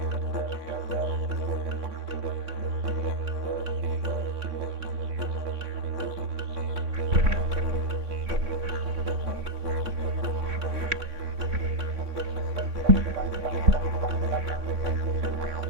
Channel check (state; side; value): late; left; 3.6 ms